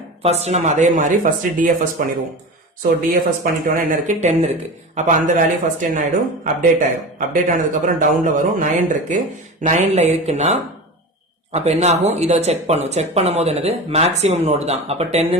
ஃபர்ஸ்ட் நம்ம அதே மாதிரி ஃபர்ஸ்ட் டிஎஃப்எஸ் பண்ணிடுவோம். சோ டிஎஃப்எஸ் பண்ணிட்டோம்னா என்ன இருக்கு, 10 இருக்கு. அப்ப அந்த வேல்யூ ஃபர்ஸ்ட் என்ன ஆயிடும், அப்டேட் ஆயிடும். அப்டேட் ஆனதுக்கு அப்புறம் டவுன்ல வரும், 9 இருக்கு. 9ல இருக்குன்னா அப்ப என்ன ஆகும், இதை செக் பண்ணும். செக் பண்ணும் போது என்னது, மேக்ஸிமம் நோடு தான். அப்ப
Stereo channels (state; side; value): normal; both; correlation 0.29